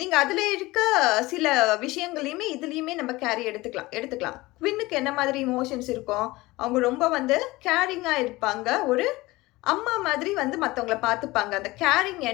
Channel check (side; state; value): right; quieter; 20.3 dB